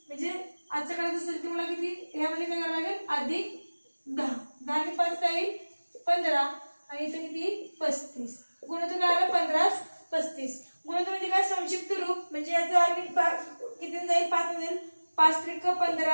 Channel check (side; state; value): both; inverted; correlation -1.00